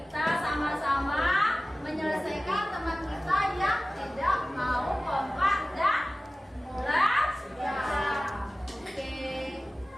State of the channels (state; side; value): normal; both; correlation 0.97